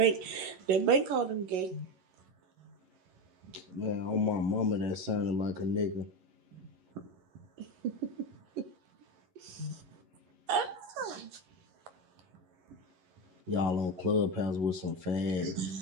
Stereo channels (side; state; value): left; late; 11 ms